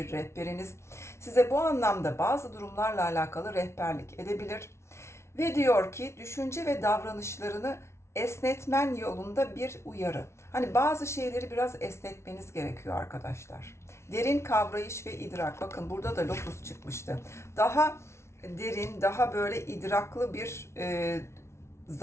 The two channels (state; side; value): late; right; 0.13 ms